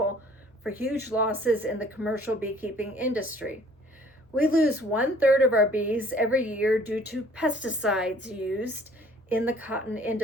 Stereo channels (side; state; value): both; normal; correlation 0.55